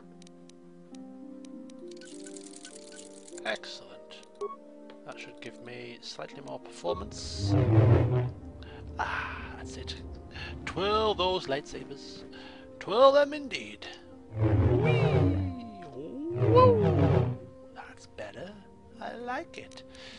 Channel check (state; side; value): identical; both; correlation 1.00